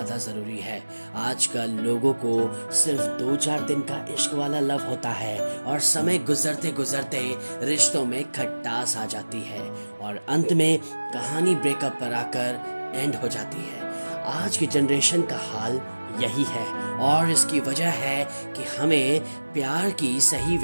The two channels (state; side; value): inverted; both; correlation -1.00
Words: ज़रूरी है। आजकल लोगों को सिर्फ 2-4 दिन का इश्क वाला लव होता है और समय गुजरते गुजरते रिश्तों में खटास आ जाती है और अंत में कहानी ब्रेकअप पर आकर एंड हो जाती है। आज की जनरेशन का हाल यही है और इसकी वजह है कि हमें प्यार की सही